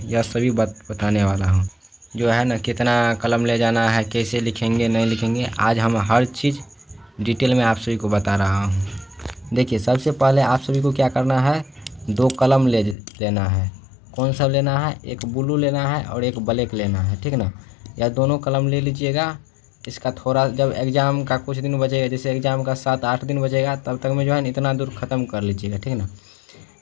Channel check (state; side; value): drops out; right; at 13.0 s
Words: यह सभी बताने वाला हूँ। जो है ना, कितना कलम ले जाना है, कैसे लिखेंगे नहीं लिखेंगे, आज हम हर चीज़ डिटेल में आप सभी को बता रहा हूँ। देखिए, सबसे पहले आप सभी को क्या करना है, 2 कलम लेना है। कौन सा लेना है? एक ब्लू लेना है और एक ब्लैक लेना है, ठीक ना। या दोनों कलम ले लीजिएगा। इसका थोड़ा जब एग्ज़ाम का कुछ दिन बचेगा, जैसे एग्ज़ाम का 7-8 दिन बचेगा, तब तक में जो है ना इतना दूर ख़त्म कर लीजिएगा, ठीक ना।